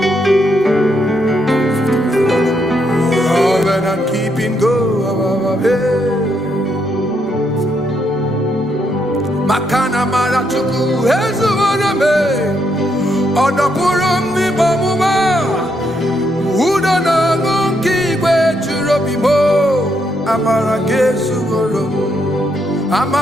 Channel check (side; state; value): both; normal; correlation 0.77